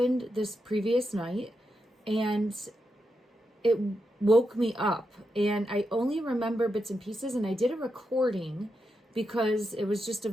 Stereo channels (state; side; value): normal; both; correlation 0.85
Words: this previous night, and it woke me up. And I only remember bits and pieces, and I did a recording because it was just a